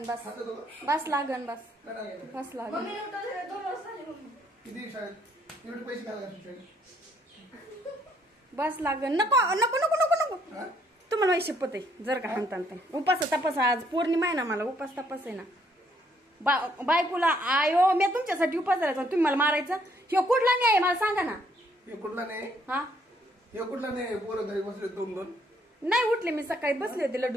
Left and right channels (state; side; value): normal; both; correlation 0.68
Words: बस बस लागन बस बस लागन. बस लागन. नको नको नको नको नको तुम्हाला माहिती शपथ आहे जर का हाणता उपास तपास. आज पौर्णिमा आहे ना मला उपास तपास आहे ना. बायकोला आयो मी तुमच्यासाठी उपास धरायचा तुम्ही मला मारायचं. हे कुठला नाही आहे मला सांगा ना. हे कुठला नाही. हा हे कुठला नाही. पोरं घरी बसले दोन दोन नाही उठले. मी सकाळी बसले होते